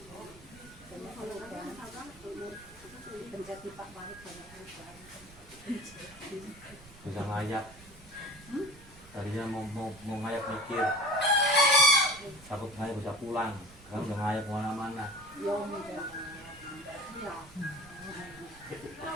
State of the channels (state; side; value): noise; right; rumble, 21 dB below the sound